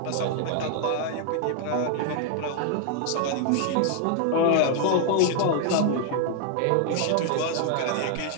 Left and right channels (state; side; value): different; both; correlation 0.00